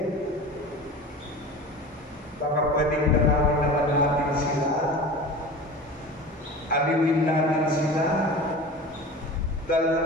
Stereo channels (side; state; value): both; normal; correlation 0.35